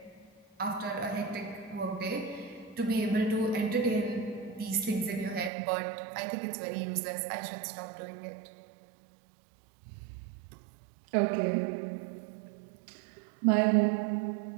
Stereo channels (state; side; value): drops out; left; at 5.5 s